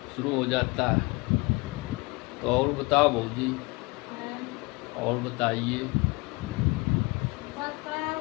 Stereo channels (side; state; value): right; quieter; 26.1 dB